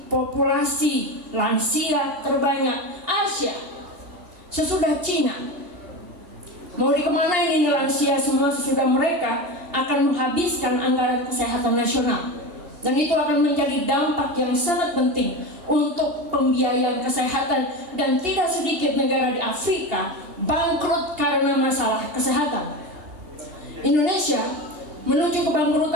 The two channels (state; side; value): late; left; 2.8 ms